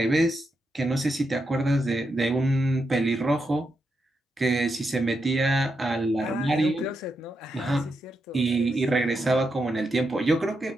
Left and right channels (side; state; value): both; normal; correlation 0.84